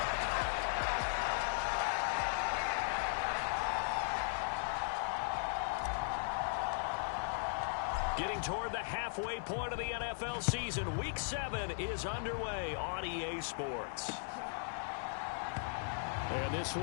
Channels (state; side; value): silent; right; digital silence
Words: Getting toward the halfway point of the NFL season. Week 7 is underway on EA Sports. And this